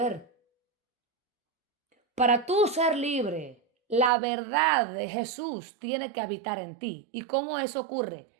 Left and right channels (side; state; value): left; drops out; at 4.1 s